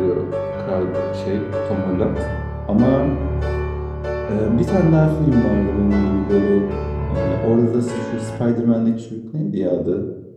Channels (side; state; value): both; identical; correlation 1.00